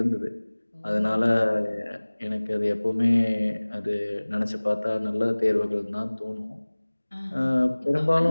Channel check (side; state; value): both; inverted; correlation -1.00